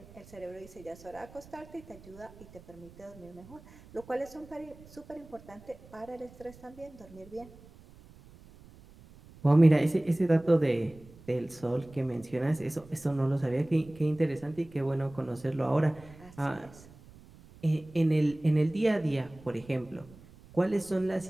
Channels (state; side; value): noise; right; rumble, 22 dB below the sound